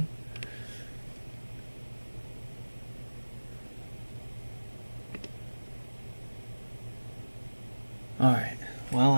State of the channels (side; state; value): both; inverted; correlation -1.00